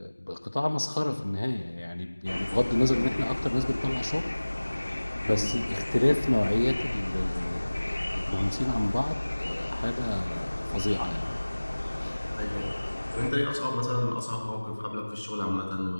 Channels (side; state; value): both; inverted; correlation -1.00